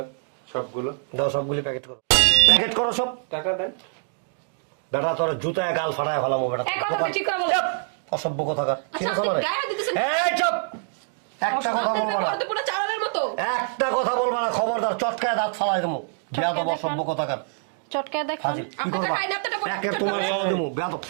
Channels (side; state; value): left; silent; digital silence